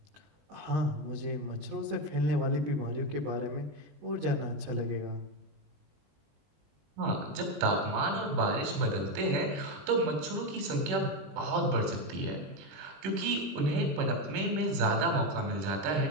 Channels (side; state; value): left; late; 21 ms